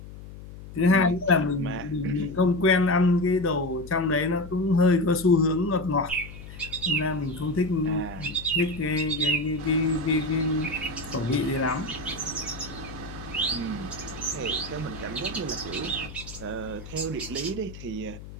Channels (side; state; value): left; noise; hum, 14 dB below the sound